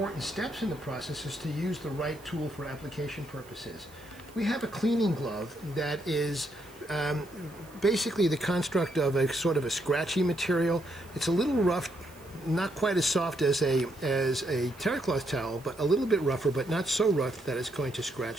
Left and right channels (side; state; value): right; noise; hiss, 25 dB below the sound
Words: steps in the process is to use the right tool for application purposes. We have a cleaning glove that is basically the construct of a sort of a scratchy material. It's a little rough, not quite as soft as a terry cloth towel, but a little bit rougher, but not so rough that it's going to